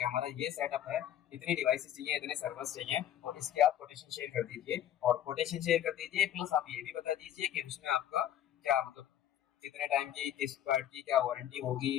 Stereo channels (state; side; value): quieter; right; 11.0 dB